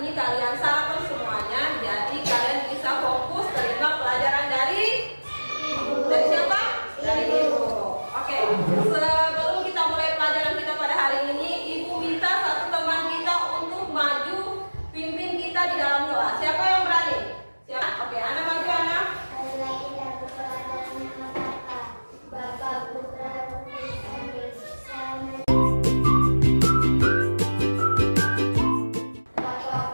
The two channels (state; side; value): inverted; both; correlation -1.00